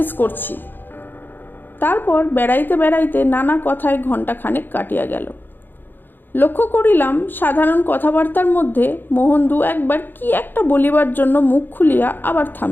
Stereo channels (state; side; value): late; right; 0.094 ms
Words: করছি। তারপর বেড়াইতে বেড়াইতে নানা কথায় ঘণ্টাখানেক কাটিয়া গেল। লক্ষ্য করিলাম সাধারণ কথাবার্তার মধ্যে মোহন 2-1 কি একটা বলিবার জন্য মুখ খুলিয়া আবার